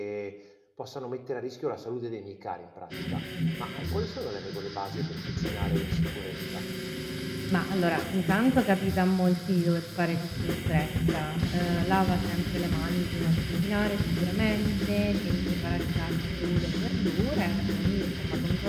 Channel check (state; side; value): identical; both; correlation 1.00